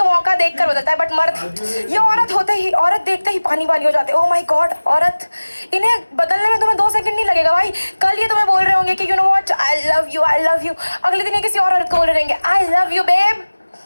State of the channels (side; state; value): both; inverted; correlation -1.00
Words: मौका देखकर बदलता है, बट मर्द, ये औरत होते ही, औरत देखते ही पानी पानी हो जाते। ओह माय गॉड, औरत, इन्हें बदलने में तुम्हें 2 सेकंड नहीं लगेगा भाई। कल ये तुम्हें बोल रहे होंगे कि you know what, I love you, I love you. अगले दिन ये किसी और औरत को बोल रहेंगे I love you babe.